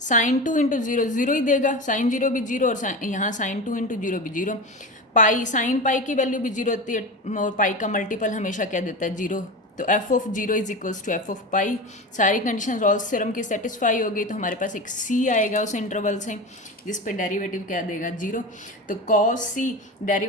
2 इंटू 0, 0 ही देगा, साइन 0 भी 0 और यहाँ साइन 2 इंटू 0 भी 0। पाई, साइन पाई की वैल्यू भी 0 होती है, और पाई का मल्टीपल हमेशा क्या देता है, 0। तो F of 0 is equals to F of pi. सारी कंडीशन रॉल्स थ्योरम की सेटिस्फाई हो गई, तो हमारे पास एक सी आएगा उस इंटरवल से, जिस पे डेरिवेटिव क्या देगा, 0। तो कॉस सी,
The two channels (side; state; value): both; normal; correlation 0.26